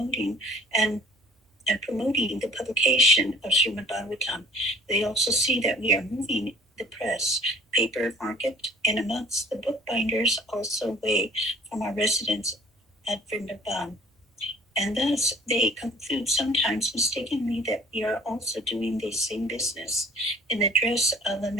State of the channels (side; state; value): both; normal; correlation 0.51